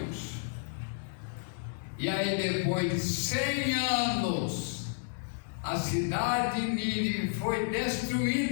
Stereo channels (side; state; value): right; silent; digital silence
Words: E aí, depois de 100 anos, a cidade de Nínive foi